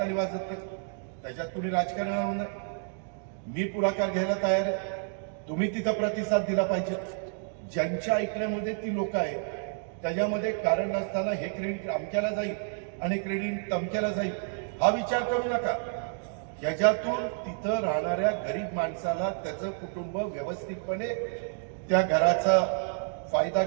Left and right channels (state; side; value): silent; left; 58 dB below the other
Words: वाजत नाही, त्याच्यात कुणी राजकारण नाही. मी पुढाकार घ्यायला तयार आहे, तुम्ही तिथं प्रतिसाद दिला पाहिजे. ज्यांच्या ऐकण्यामध्ये ती लोक आहेत, त्याच्यामध्ये कारण नसताना हे क्रेडिट अमक्याला जाईल आणि क्रेडिट तमक्याला जाईल हा विचार करू नका. याच्यातून तिथं राहणाऱ्या गरीब माणसाला त्याचं कुटुंब व्यवस्थितपणे त्या घराचा फायदा